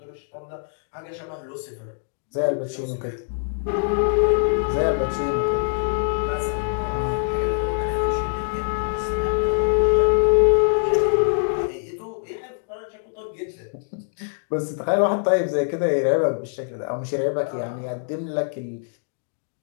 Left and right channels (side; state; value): right; silent; digital silence